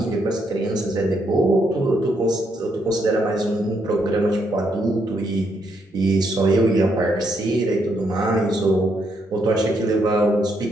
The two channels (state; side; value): normal; both; correlation 0.76